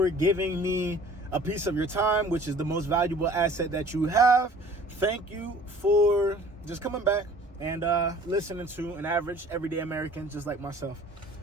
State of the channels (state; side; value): normal; both; correlation 0.50